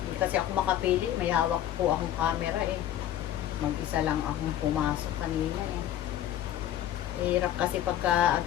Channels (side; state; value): right; quieter; 11.9 dB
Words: Hindi kasi ako makapili. May hawak po akong camera eh. Mag-isa lang akong pumasok kanina eh. Hirap kasi pagka